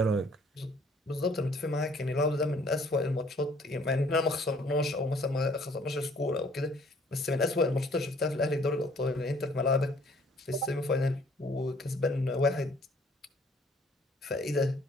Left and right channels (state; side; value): normal; both; correlation 0.59